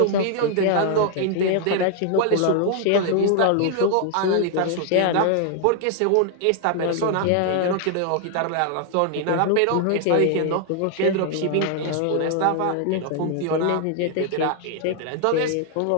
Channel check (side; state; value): both; different; correlation 0.00